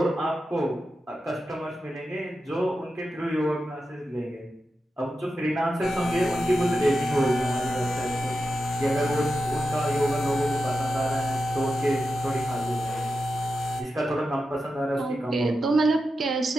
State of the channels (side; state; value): both; normal; correlation 0.90